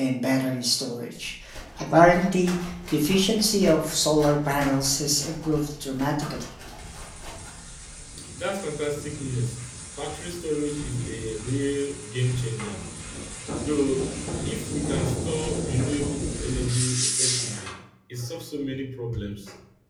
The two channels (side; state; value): both; identical; correlation 1.00